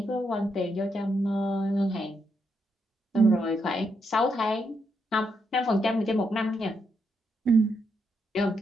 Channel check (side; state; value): both; normal; correlation 0.80